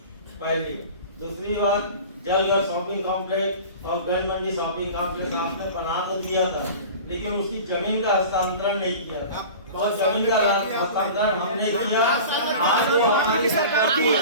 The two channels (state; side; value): inverted; both; correlation -0.37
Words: पहली दूसरी बात, जलघर शॉपिंग कॉम्प्लेक्स और गन मंडी शॉपिंग कॉम्प्लेक्स आपने बना तो दिया था, लेकिन उसकी जमीन का हस्तांतरण नहीं किया था। और जमीन का हस्तांतरण हमने किया। आज वो हमारी संपत्ति है,